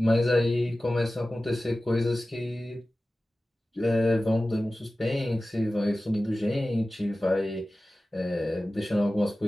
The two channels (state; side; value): normal; both; correlation 0.96